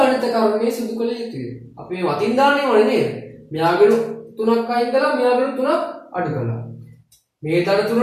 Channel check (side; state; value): both; identical; correlation 1.00